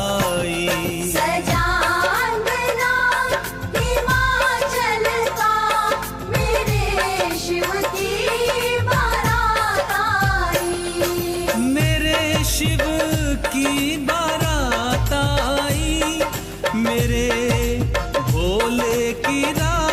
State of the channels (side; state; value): both; identical; correlation 1.00